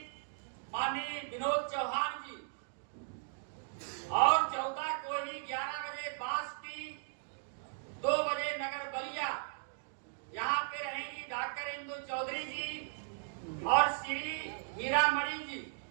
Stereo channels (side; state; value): left; silent; digital silence